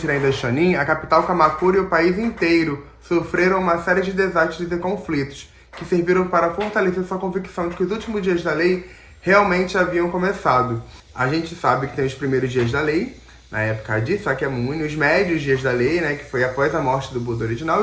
Daishonin, a capital Kamakura e o país inteiro sofreram uma série de desastres e conflitos, que serviram para fortalecer sua convicção de que os últimos dias da lei realmente haviam começado. A gente sabe que tem os primeiros dias da lei, na época de Sakyamuni, os médios dias da lei, que foi após a morte do Buda original,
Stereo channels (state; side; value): identical; both; correlation 1.00